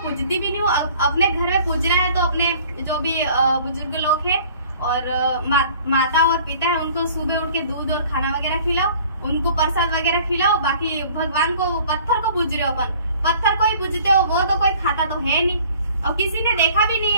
भी नहीं हूँ। अपने घर में पूजना है तो अपने जो भी बुजुर्ग लोग है और माता और पिता है उनको सुबह उठ के दूध और खाना वगैरह खिलाओ, उनको प्रसाद वगैरह खिलाओ। बाकी भगवान को, पत्थर को पूज रहे हो, अपन पत्थर को ही पूजते हो, वो तो कोई खाता तो है नहीं और किसी ने देखा भी नहीं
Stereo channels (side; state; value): both; inverted; correlation -0.51